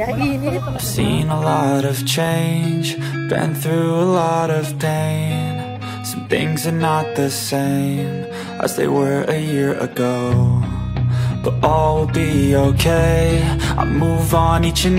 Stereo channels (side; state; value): both; identical; correlation 1.00